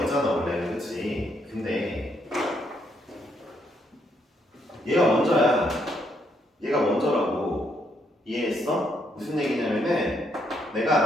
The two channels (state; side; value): normal; both; correlation 0.74